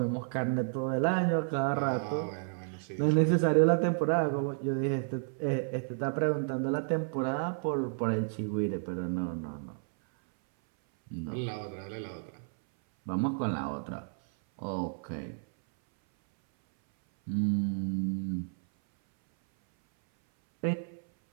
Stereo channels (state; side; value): silent; left; 57 dB below the other